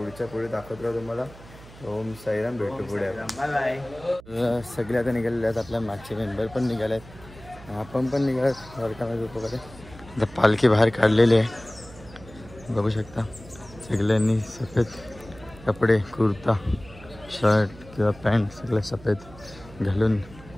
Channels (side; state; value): right; noise; hum, 20 dB below the sound